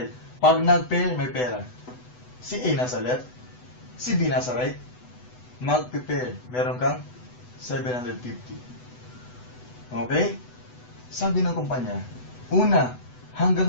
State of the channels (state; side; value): late; right; 8.0 ms